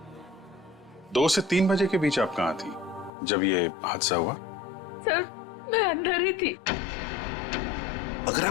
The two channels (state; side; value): drops out; right; at 3.1 s